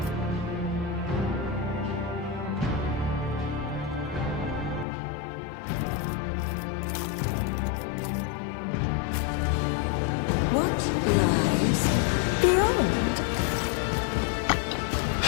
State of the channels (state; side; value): drops out; right; at 4.9 s